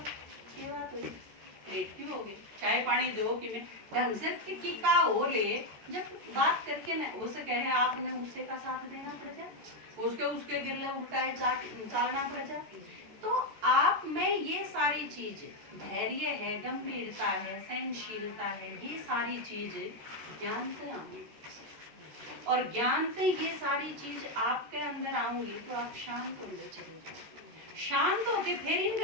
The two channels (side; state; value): left; late; 14 ms